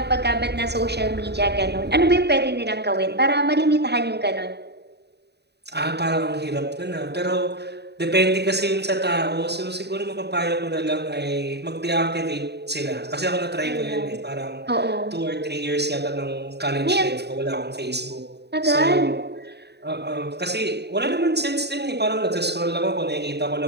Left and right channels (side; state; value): left; late; 0.48 ms